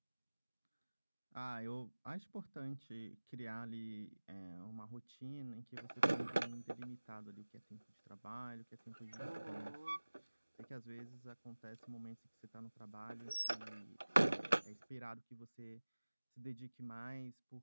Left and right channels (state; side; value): inverted; both; correlation -1.00